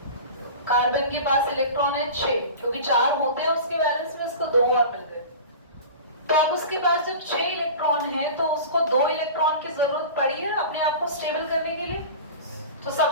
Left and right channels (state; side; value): inverted; both; correlation -0.35